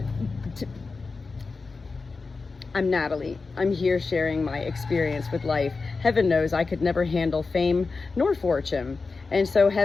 I'm Natalie. I'm here sharing my experience with life. Heaven knows I could never handle fame nor fortune. And so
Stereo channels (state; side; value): quieter; right; 4.2 dB